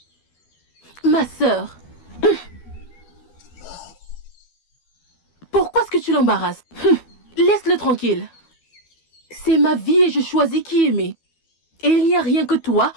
Ma sœur. Pourquoi est-ce que tu l'embarrasses? Laisse-le tranquille. C'est ma vie et je choisis qui aimer. Et il n'y a rien que toi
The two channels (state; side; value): late; right; 12 ms